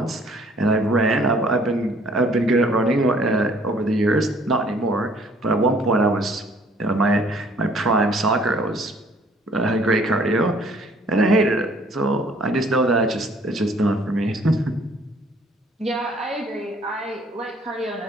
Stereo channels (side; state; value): both; normal; correlation 0.58